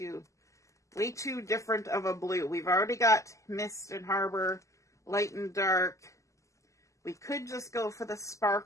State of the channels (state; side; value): late; right; 0.15 ms